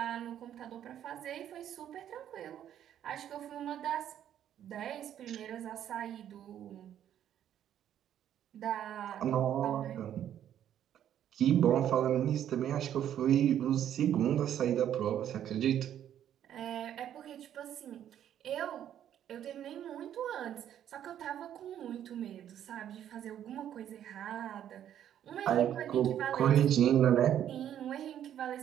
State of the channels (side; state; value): left; quieter; 10.5 dB